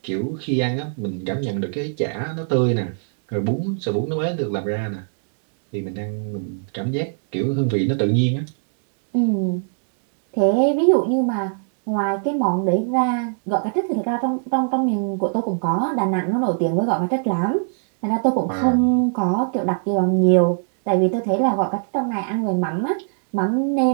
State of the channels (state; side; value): silent; left; 64 dB below the other